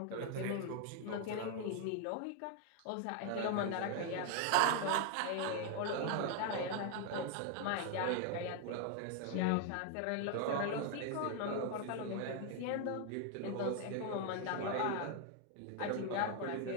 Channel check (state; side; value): different; both; correlation 0.01